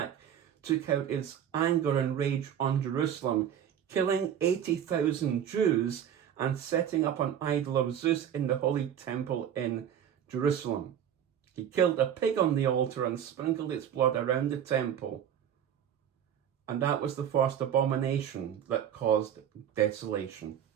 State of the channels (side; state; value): left; quieter; 9.4 dB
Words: took out his anger and rage on Jerusalem, killing 80,000 Jews and setting up an idol of Zeus in the holy temple in Jerusalem. He killed a pig on the altar and sprinkled its blood around the temple. And that was the first abomination that caused desolation.